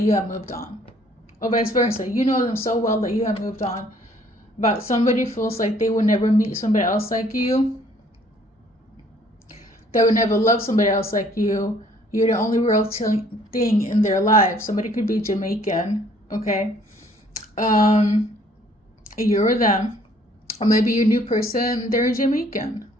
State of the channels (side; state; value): both; normal; correlation 0.60